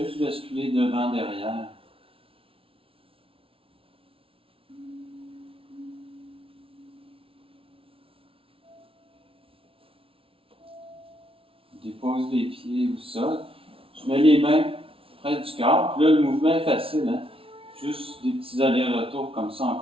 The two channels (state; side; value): late; left; 0.26 ms